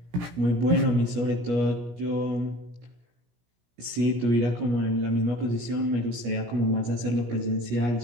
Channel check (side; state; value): left; late; 17 ms